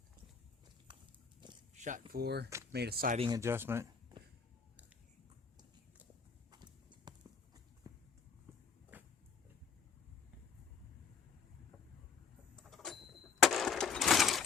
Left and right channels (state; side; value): quieter; right; 5.8 dB